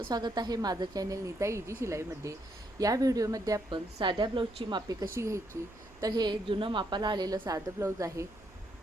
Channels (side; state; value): right; noise; rumble, 25 dB below the sound